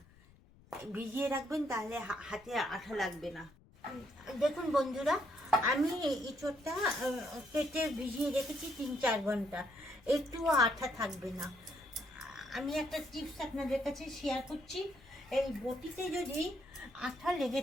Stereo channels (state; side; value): noise; left; rumble, 26 dB below the sound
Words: ভিজিয়ে রাখবেন, তাহলে হাতে আঠা লাগবে না। দেখুন বন্ধুরা, আমি ইঁচড়টা কেটে ভিজিয়ে রেখেছি 3-4 ঘন্টা, একটুও আঠা থাকবে না। আমি একটা টিপস আপনাদের কাছে শেয়ার করছি। এই বটিতে যদি আঠা লেগে